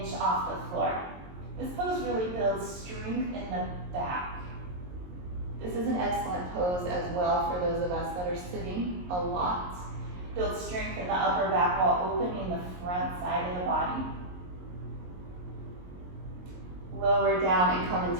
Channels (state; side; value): late; left; 22 ms